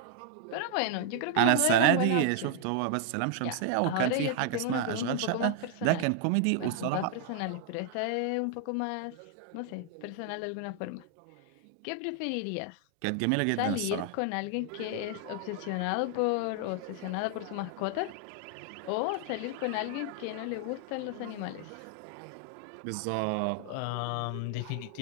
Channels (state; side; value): different; both; correlation 0.00